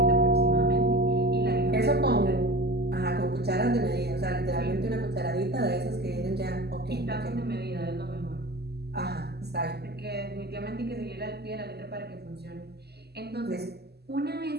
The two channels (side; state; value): left; late; 0.47 ms